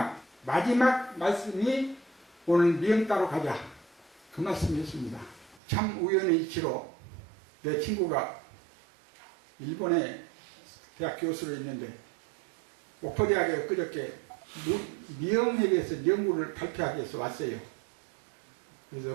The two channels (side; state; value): left; drops out; at 5.6 s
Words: 말씀이 오늘 미영 따러 가자. 그 말씀이었습니다. 참 우연의 이치로 내 친구가 일본에 대학 교수로 있는데 목포대학에 그저께 미영에 대해서 연구를 발표하기 위해서 왔어요. 그래서